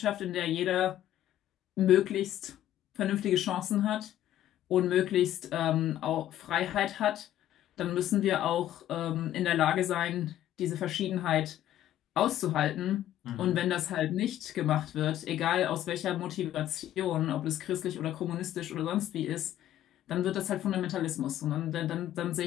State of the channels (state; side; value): quieter; right; 12.4 dB